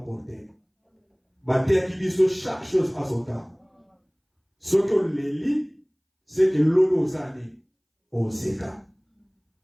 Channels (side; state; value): both; identical; correlation 1.00